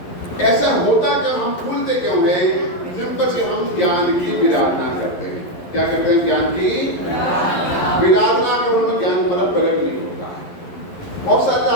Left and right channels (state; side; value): late; right; 11 ms